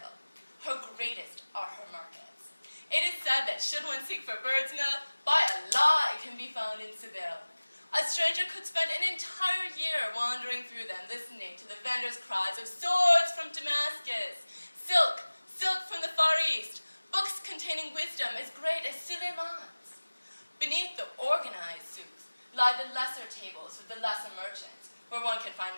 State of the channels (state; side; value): inverted; both; correlation -1.00